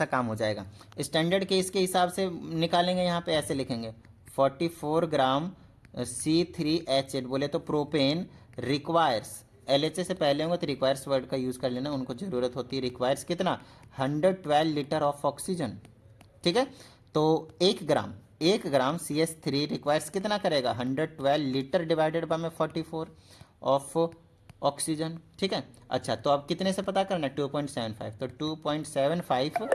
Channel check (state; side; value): identical; both; correlation 1.00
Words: काम हो जाएगा। स्टैंडर्ड केस के हिसाब से निकालेंगे, यहाँ पे ऐसे लिखेंगे 44 ग्राम C3H8, बोले तो प्रोपेन रिक्वायर्स, LHA से पहले होंगे तो रिक्वायर्स वर्ड का यूज़ कर लेना, उनको ज़रूरत होती है। रिक्वायर्स कितना 112 लीटर ऑफ ऑक्सीजन, ठीक है। तो 1 ग्राम CH3 रिक्वायर्स कितना करेगा 112 लीटर डिवाइडेड बाय में 44 ऑफ ऑक्सीजन, ठीक है। अच्छा तो अब कितने से पता करना है 2.75, तो 2.75,